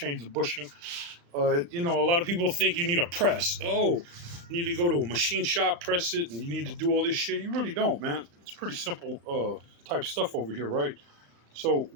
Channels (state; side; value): late; left; 35 ms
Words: the bushing. A lot of people think you need a press. Oh, you need to go to a machine shop, press it, and you need to do all this shit. You really don't, man. It's pretty simple type stuff over here, right? So